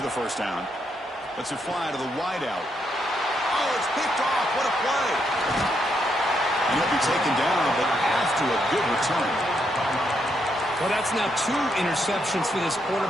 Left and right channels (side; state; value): both; normal; correlation 0.78